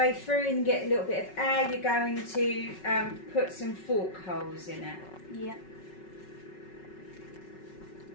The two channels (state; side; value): late; right; 5.4 ms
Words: through and get a little bit of air, you're going to put some fork holes in it. Yeah.